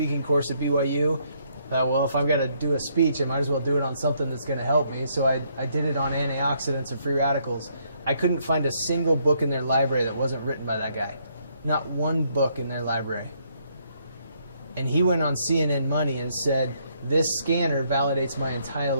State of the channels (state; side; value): inverted; both; correlation -0.71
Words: course at BYU, I thought, well, if I've got to do a speech, I might as well do it on something that's going to help me. So I did it on antioxidants and free radicals. I couldn't find a single book in their library that wasn't written by that guy. Not one book in their library. And he went on CNN Money and said, this scanner validates my entire